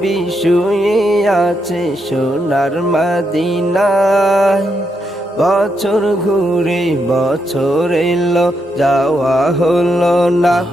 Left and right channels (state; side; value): normal; both; correlation 0.81